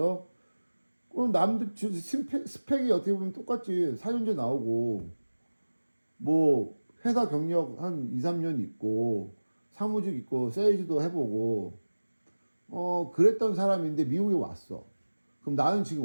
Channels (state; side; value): inverted; both; correlation -1.00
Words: 그럼 남들 스펙이 어떻게 보면 똑같지. 4년제 나오고 뭐 회사 경력 한 2, 3년 있고 사무직 있고 세일즈도 해보고 그랬던 사람인데 미국에 왔어. 그럼 나는 지금